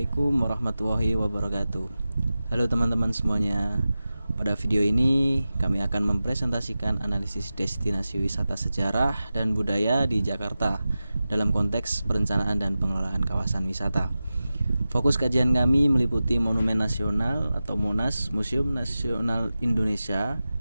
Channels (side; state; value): both; inverted; correlation -0.94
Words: warahmatullahi wabarakatuh. Halo teman-teman semuanya. Pada video ini kami akan mempresentasikan analisis destinasi wisata sejarah dan budaya di Jakarta dalam konteks perencanaan dan pengelolaan kawasan wisata. Fokus kajian kami meliputi Monumen Nasional atau Monas, Museum Nasional Indonesia,